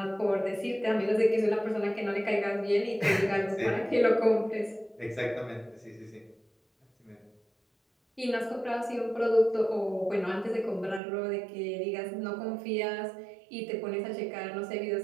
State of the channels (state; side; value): drops out; left; at 11.0 s